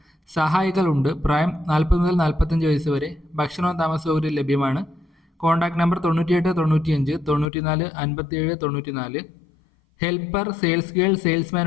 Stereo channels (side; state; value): right; drops out; at 7.5 s